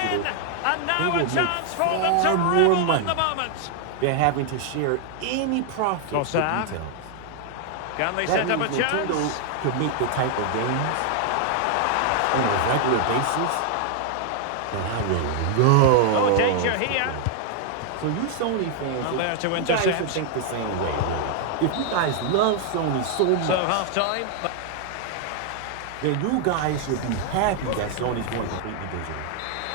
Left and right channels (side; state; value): both; different; correlation 0.00